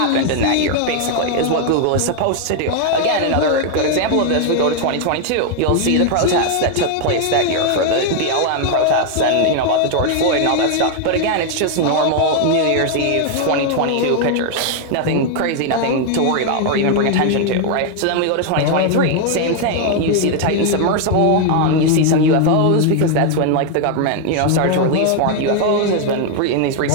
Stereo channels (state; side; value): different; both; correlation 0.00